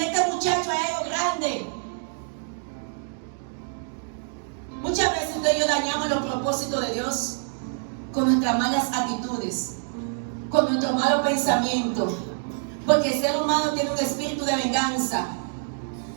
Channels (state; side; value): silent; left; digital silence